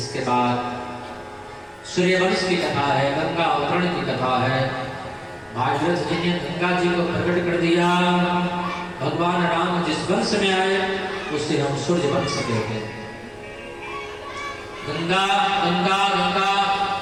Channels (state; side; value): identical; both; correlation 1.00